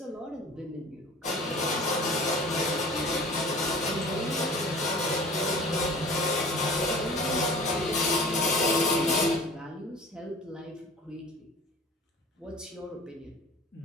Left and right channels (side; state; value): both; normal; correlation 0.43